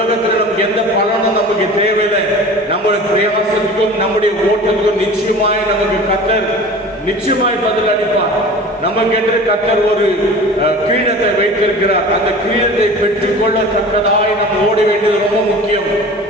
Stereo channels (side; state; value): both; normal; correlation 0.39